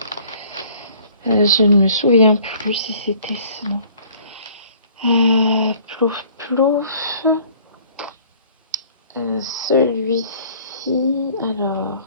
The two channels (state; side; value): inverted; both; correlation -0.54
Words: je ne me souviens plus si c'était ça. Plouf, plouf. Celui-ci, alors.